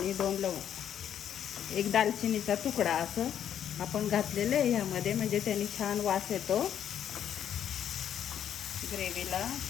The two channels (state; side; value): quieter; right; 9.7 dB